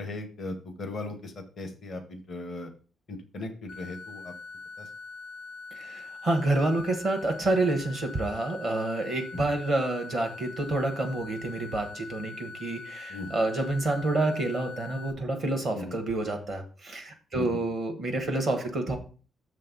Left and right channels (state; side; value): normal; both; correlation 0.78